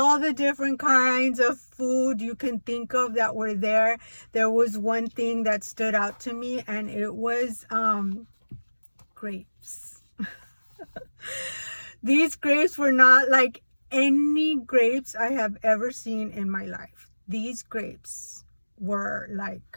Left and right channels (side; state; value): both; inverted; correlation -1.00